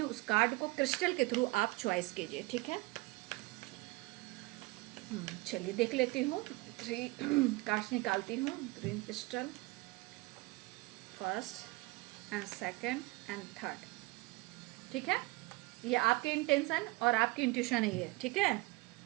उस कार्ड को क्रिस्टल के थ्रू आप चॉइस कीजिए। ठीक है, चलिए देख लेती हूँ। 3 कार्ड्स निकालती हूँ। Green crystal, first and second and third. ठीक है, ये आपके इंटेंशन और आपकी इंट्यूशन ही है। ठीक है,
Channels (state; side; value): quieter; left; 23.3 dB